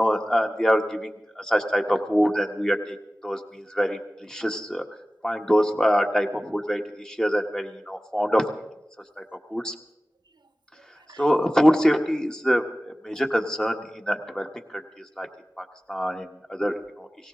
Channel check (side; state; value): both; normal; correlation 0.96